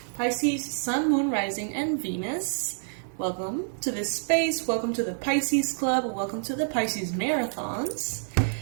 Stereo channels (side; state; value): left; silent; 60 dB below the other